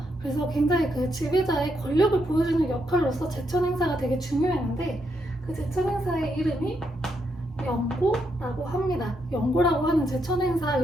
그래서 굉장히 그 지배자의 권력을 보여주는 역할로서 제천 행사가 되게 중요했는데, 그 제천 행사의 이름이 영고라고 합니다. 영고라고 하는 제천 행사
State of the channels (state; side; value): normal; both; correlation 0.79